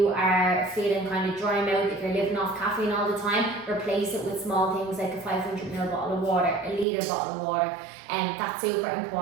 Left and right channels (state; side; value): drops out; left; at 6.9 s